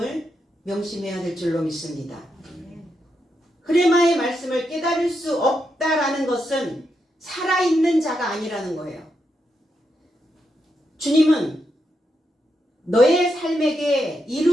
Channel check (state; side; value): normal; both; correlation 0.83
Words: 명심해야 될 줄로 믿습니다. 흐레마의 말씀을 깨달을 수 없다라는 것은 살아있는 자가 아니라는 거예요. 주님은 너의 삶에게